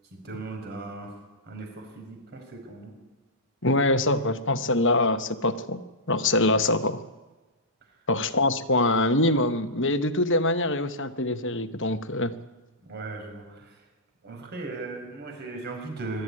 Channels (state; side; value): normal; both; correlation -0.15